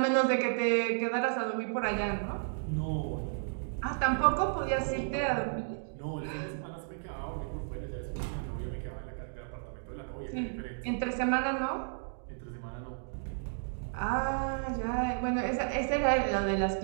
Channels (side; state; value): left; silent; digital silence